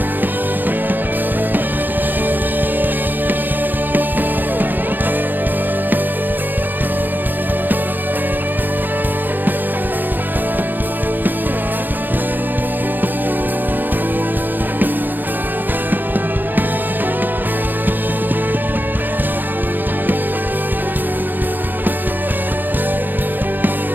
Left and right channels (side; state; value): left; late; 0.089 ms